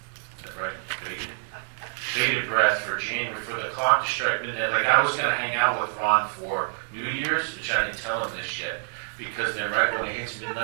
Is that right? Bated breath for January, for the clock to strike midnight. Like, I was gonna hang out with Ron for New Year's, which I didn't tell him this yet, because then right when it hits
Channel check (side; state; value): left; silent; 60 dB below the other